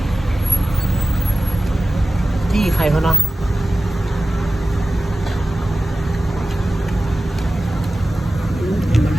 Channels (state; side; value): normal; both; correlation 0.94